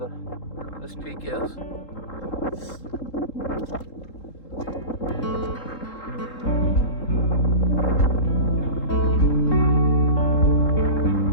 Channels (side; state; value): right; late; 3.8 ms